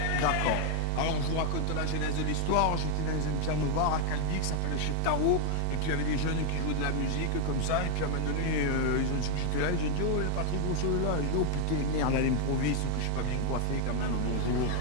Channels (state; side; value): different; both; correlation 0.00